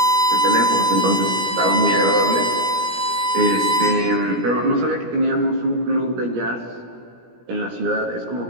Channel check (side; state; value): left; late; 17 ms